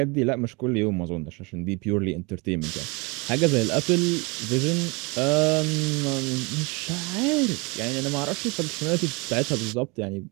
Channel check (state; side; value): quieter; left; 28.5 dB